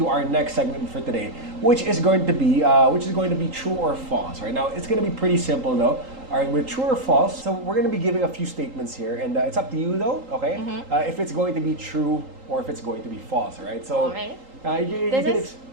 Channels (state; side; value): late; left; 3.8 ms